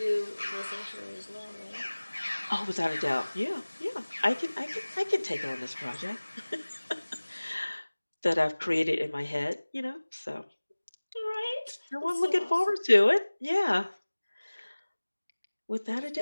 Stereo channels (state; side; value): inverted; both; correlation -1.00